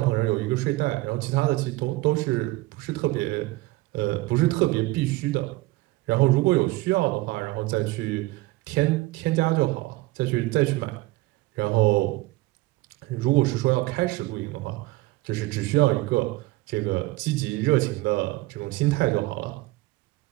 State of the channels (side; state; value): left; quieter; 20.1 dB